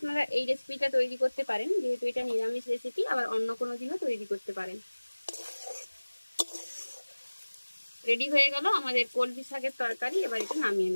এই রেসিপিটা তৈরি করতে পারেন, যেহেতু এটা নিরামিষ রেসিপি, আবার অন্য কোনো দিনও তৈরি করতে পারেন। রেডি হয়ে গেল আমাদের কলমি শাকের তরকারি। এবার এটা নামিয়ে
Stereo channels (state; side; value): inverted; both; correlation -1.00